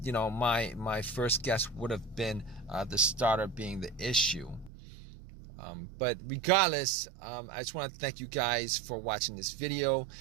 first guess would have been the starter being the issue. But regardless, I just want to thank you guys for watching this video.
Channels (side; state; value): left; drops out; at 4.7 s